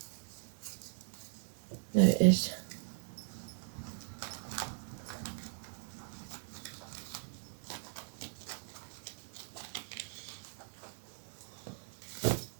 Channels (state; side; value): silent; left; digital silence